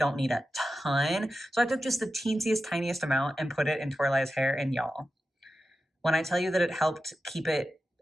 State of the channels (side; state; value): both; normal; correlation 0.91